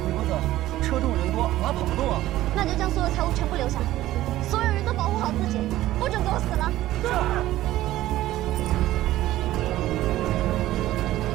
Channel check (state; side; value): quieter; left; 15.1 dB